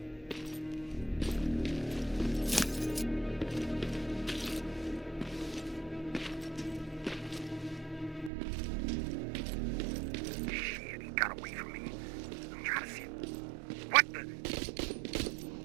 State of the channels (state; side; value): drops out; left; at 8.3 s